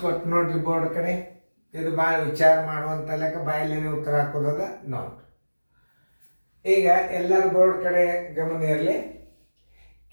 ಕೊಟ್ಟು ನೋಡ್ರಿ ಬೋರ್ಡ್ ಕಡೆ. ಇದು ಭಾಳ ವಿಚಾರ ಮಾಡುವಂಥ ಲೆಕ್ಕ, ಬಾಯಲ್ಲೇನೆ ಉತ್ತರ ಹಾಕೋದದ ನೋಡ್ರಿ. ಈಗ ಎಲ್ಲರ ಬೋರ್ಡ್ ಕಡೆ ಗಮನ ಇರಲಿ.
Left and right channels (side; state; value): both; inverted; correlation -1.00